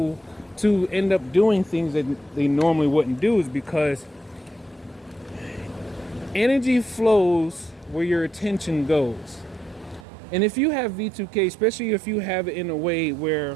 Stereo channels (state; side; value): drops out; left; at 10.1 s